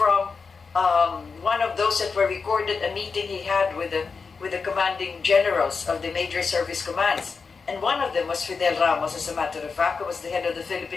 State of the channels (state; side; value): quieter; right; 5.0 dB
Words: one of those that were recorded, a meeting he had with the commanding generals of the major service commands. And one of them was Fidel Ramos, as a matter of fact, who was the head of the